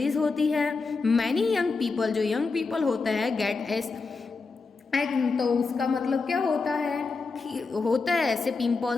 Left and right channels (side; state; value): right; quieter; 4.3 dB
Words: होती है। मैनी यंग पीपल, जो यंग पीपल होते हैं, गेट एस, तो उसका मतलब क्या होता है, होता है ऐसे